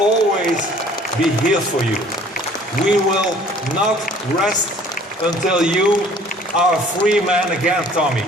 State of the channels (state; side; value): normal; both; correlation 0.53